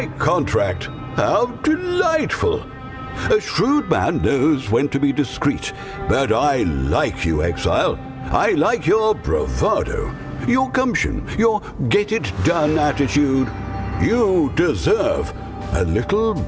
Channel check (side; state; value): both; identical; correlation 1.00